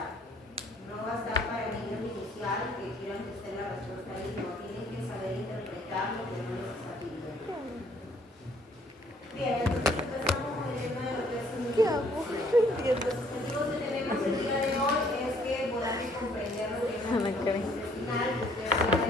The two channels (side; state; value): both; normal; correlation 0.63